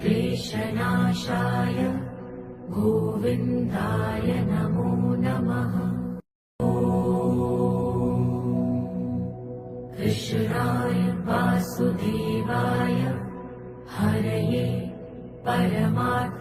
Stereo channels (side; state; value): both; identical; correlation 1.00